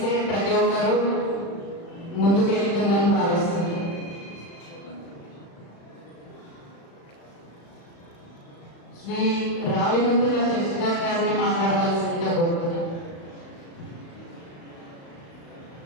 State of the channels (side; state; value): right; late; 35 ms